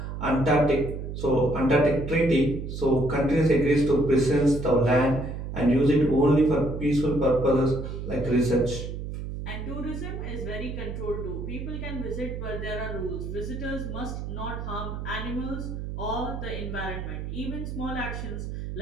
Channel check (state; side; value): noise; right; hum, 6 dB below the sound